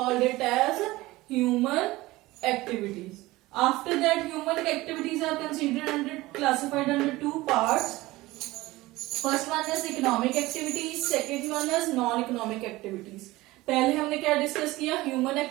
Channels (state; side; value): quieter; left; 19.3 dB